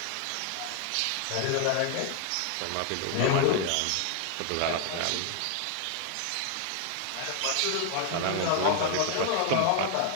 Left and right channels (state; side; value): different; both; correlation 0.00